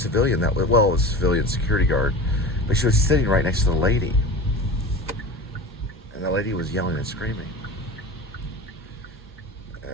That was, well, it was a civilian security guard, but she was sitting right next to the lady, and the lady was yelling and screaming.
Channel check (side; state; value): both; normal; correlation 0.32